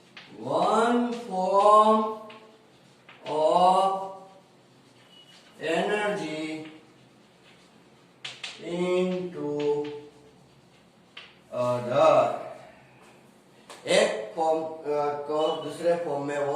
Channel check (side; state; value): both; identical; correlation 1.00